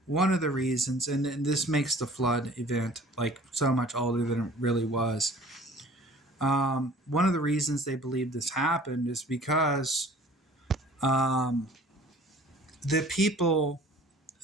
One of the reasons, and this makes the flood event like so much older than it really was. One of the reasons they believe this happened is because the people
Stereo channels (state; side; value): normal; both; correlation 0.49